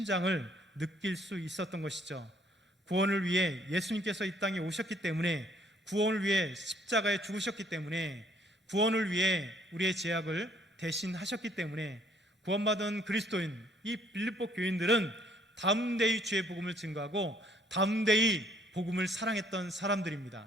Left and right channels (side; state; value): both; normal; correlation 0.64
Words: 느낄 수 있었던 것이죠. 구원을 위해 예수님께서 이 땅에 오셨기 때문에, 구원을 위해 십자가에 죽으셨기 때문에, 구원을 위해 우리의 죄악을 대신하셨기 때문에 구원받은 그리스도인 이 빌립보 교인들은 담대히 주의 복음을 증거하고 담대히 복음을 사랑했던